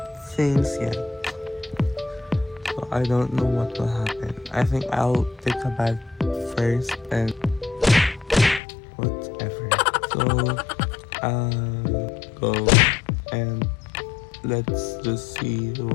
things yet. So I don't know what will happen. I think I'll take a bath first and whatever. So go and let's just see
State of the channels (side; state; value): right; drops out; at 8.6 s